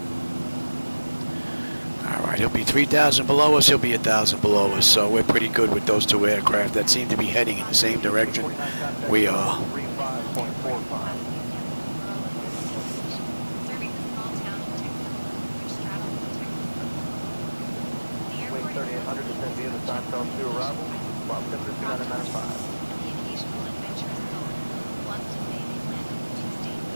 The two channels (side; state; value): both; inverted; correlation -1.00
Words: Alright, he'll be 3,000 below us, he'll be 1,000 below us, so we're pretty good with those two aircraft that seem to be heading in the same direction we are. Serving the small town of Texas, which straddles the Texas coast. The airport is 3800 descend via the Seinfeld to arrival, while temperature 295. the occasional adventurous soul wants to say they landed 2 states